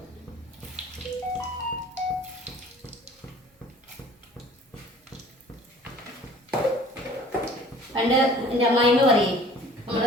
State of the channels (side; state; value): both; normal; correlation 0.49